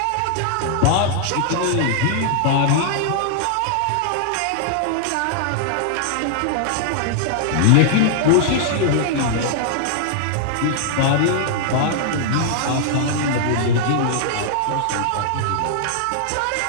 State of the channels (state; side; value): different; both; correlation -0.01